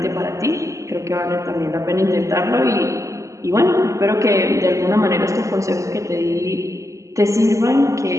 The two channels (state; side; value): late; left; 0.15 ms